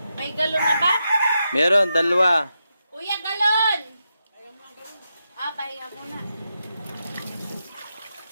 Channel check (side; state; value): both; inverted; correlation -0.86